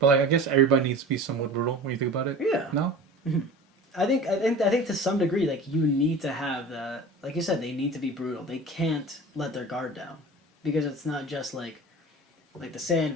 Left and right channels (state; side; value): normal; both; correlation 0.37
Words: like, I guess everybody needs to be somewhat brutal when you think about it. Yeah. No. I think to some degree, like you need to have the, like you said, they need to be brutal. They can't let their guard down, because it's not just like the